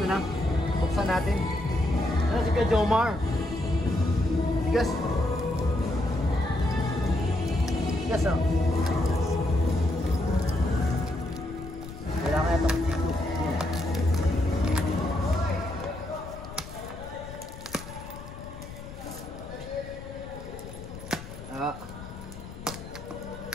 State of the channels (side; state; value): left; noise; rumble, 13 dB below the sound